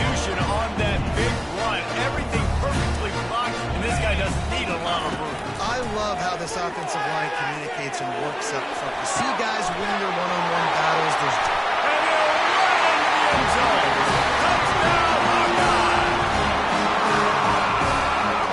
on that big run. Everything perfectly blocked, and this guy doesn't need a lot of room. I love how this offensive line communicates and works up front. You see guys winning their one-on-one battles. There's And they'll run into the end zone. Touchdown, Hawkeye!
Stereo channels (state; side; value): identical; both; correlation 1.00